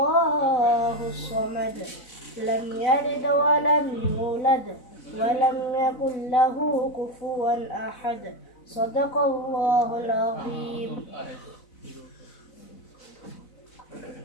الصمد لم يلد ولم يولد ولم يكن له كفوا أحد صدق الله العظيم.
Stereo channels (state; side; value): late; right; 4.0 ms